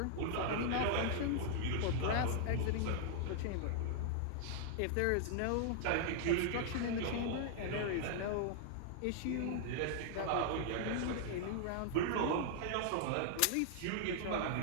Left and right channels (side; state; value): both; different; correlation -0.01